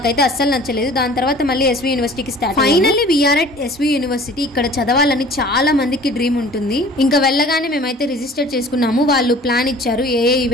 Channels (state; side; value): normal; both; correlation 0.47